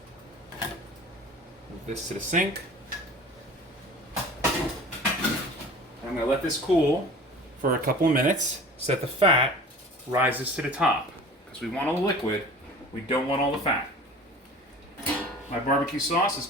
Move this to the sink. I'm going to let this cool for a couple of minutes so that the fat rises to the top. Because we want all the liquid, we don't want all the fat. My barbecue sauce has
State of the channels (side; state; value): both; normal; correlation 0.42